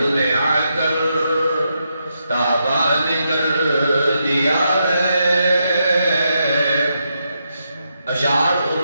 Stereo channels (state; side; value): inverted; both; correlation -0.82